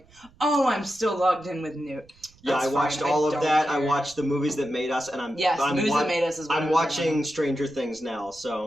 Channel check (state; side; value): noise; right; rumble, 28 dB below the sound